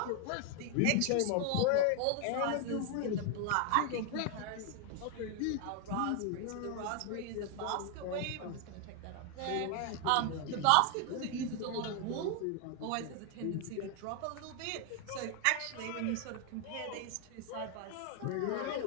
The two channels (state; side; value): different; both; correlation 0.00